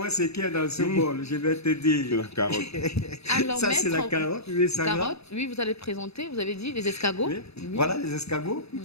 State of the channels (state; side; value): late; right; 0.79 ms